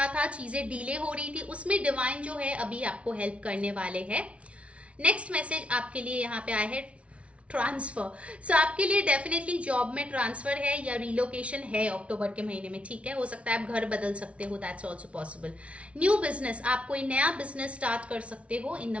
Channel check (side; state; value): left; late; 0.062 ms